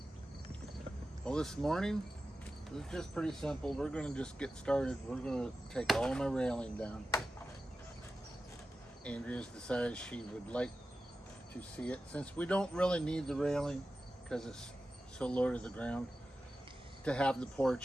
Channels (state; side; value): normal; both; correlation 0.93